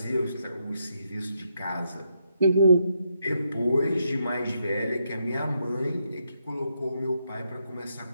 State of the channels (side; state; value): both; inverted; correlation -0.79